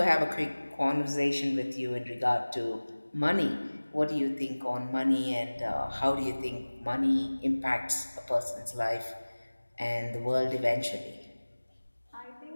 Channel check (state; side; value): inverted; both; correlation -1.00